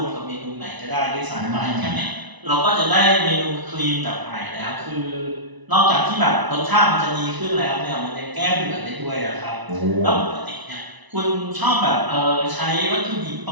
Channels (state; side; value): late; left; 1.0 ms